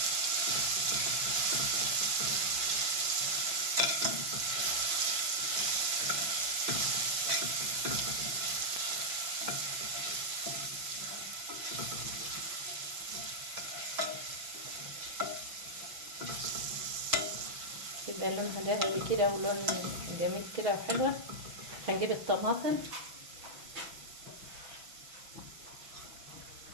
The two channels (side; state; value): left; late; 6.0 ms